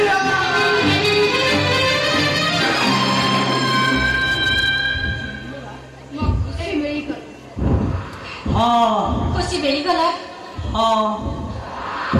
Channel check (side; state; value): both; identical; correlation 1.00